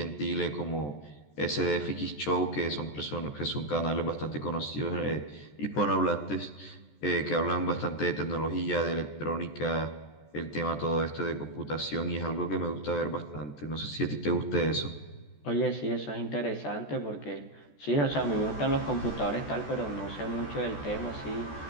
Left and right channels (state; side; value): late; right; 14 ms